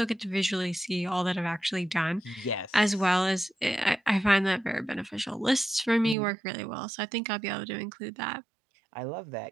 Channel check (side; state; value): left; drops out; at 6.2 s